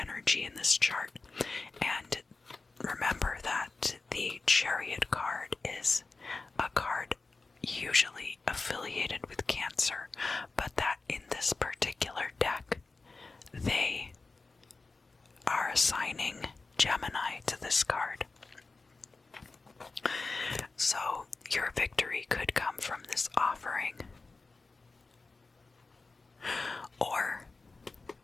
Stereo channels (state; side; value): quieter; right; 3.8 dB